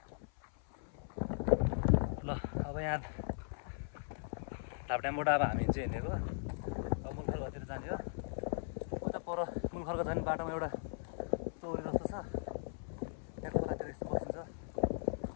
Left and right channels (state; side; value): silent; right; 52 dB below the other